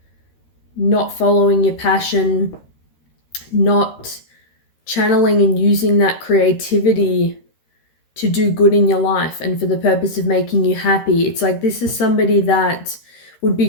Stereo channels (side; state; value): right; late; 13 ms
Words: not following your passion, not channeling and using that creativity to do good in your life and for the purpose of making you happy. It's like this is somebody that would